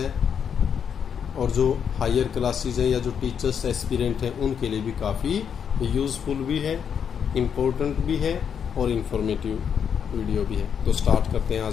और जो हायर क्लासेस है या जो टीचर्स एस्पिरेंट हैं उनके लिए भी काफ़ी यूज़फुल भी है, इम्पोर्टेंट भी है और इंफॉर्मेटिव वीडियो भी है। तो स्टार्ट करते हैं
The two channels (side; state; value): right; quieter; 7.6 dB